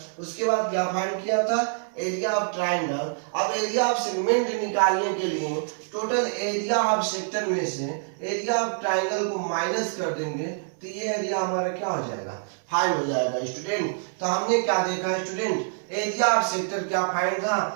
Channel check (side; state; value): left; silent; 61 dB below the other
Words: उसके बाद क्या फाइंड किया था, एरिया ऑफ ट्रायंगल। अब एरिया ऑफ सेगमेंट निकालने के लिए टोटल एरिया ऑफ सेक्टर में से एरिया ऑफ ट्रायंगल को माइनस कर देंगे, तो ये एरिया हमारा क्या हो जाएगा, फाइंड हो जाएगा स्टूडेंट। तो हमने क्या देखा स्टूडेंट, एरिया ऑफ सेक्टर क्या फाइंड था,